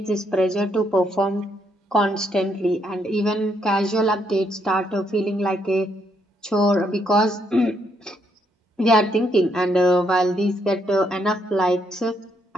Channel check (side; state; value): both; normal; correlation 0.75